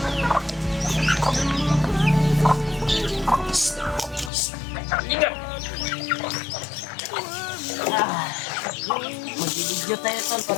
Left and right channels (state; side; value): drops out; right; at 4.3 s